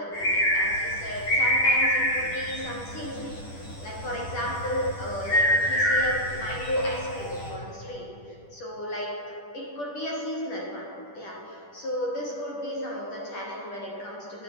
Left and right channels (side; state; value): right; late; 10 ms